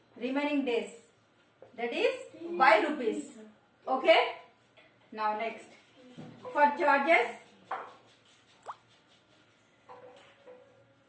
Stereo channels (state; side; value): identical; both; correlation 1.00